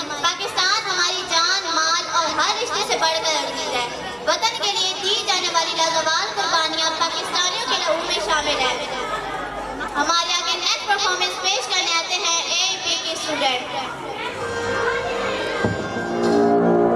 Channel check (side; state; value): both; identical; correlation 1.00